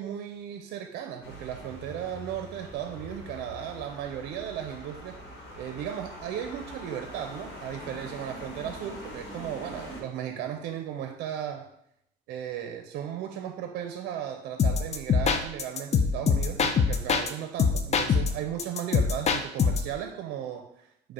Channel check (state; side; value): normal; both; correlation 0.37